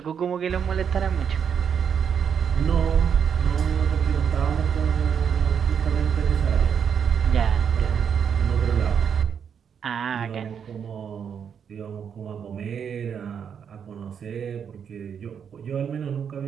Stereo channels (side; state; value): left; quieter; 7.5 dB